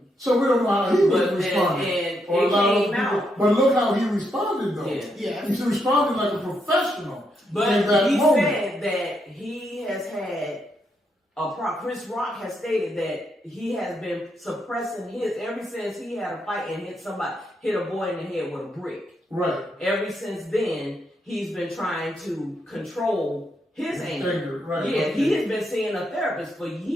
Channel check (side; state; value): both; normal; correlation 0.79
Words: So we don't know how he would respond. But look how he responded, though. Yeah. He responded like a professional. But in that he moment. said that he has had Chris Rock has stated that he has been suppressing his ever since he had a fight and hit a boy in the head with a brick. Right. Ever since then, he's been trying to control his anger. Right. Yeah, Okay. he has been seeing a therapist for